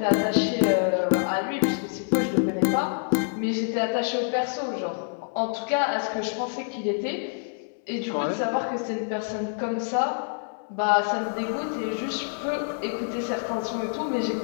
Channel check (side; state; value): right; silent; digital silence